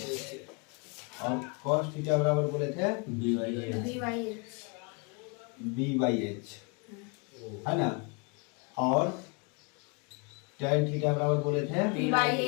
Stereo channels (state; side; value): quieter; right; 33.2 dB